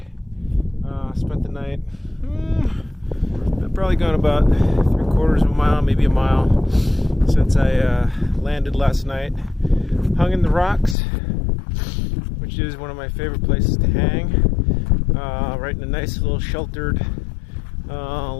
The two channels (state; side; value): drops out; right; at 11.0 s